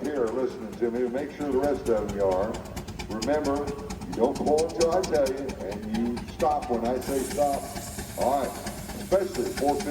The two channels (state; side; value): identical; both; correlation 1.00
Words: here are listening to me. Make sure the rest of them are. Remember, you don't pull until I tell you, and you stop when I say stop. All right. Especially 4,